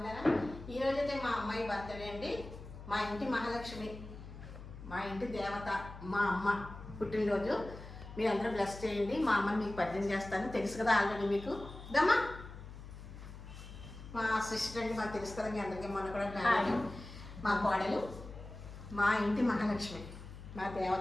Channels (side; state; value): left; noise; hum, 13 dB below the sound